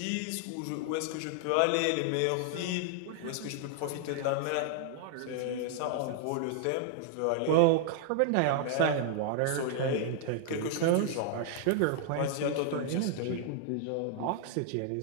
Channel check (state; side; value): different; both; correlation 0.00